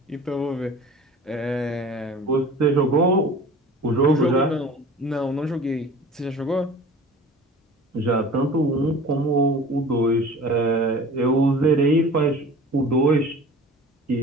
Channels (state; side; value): normal; both; correlation 0.42